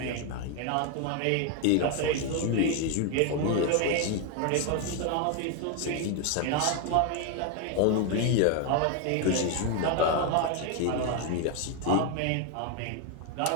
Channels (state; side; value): different; both; correlation 0.01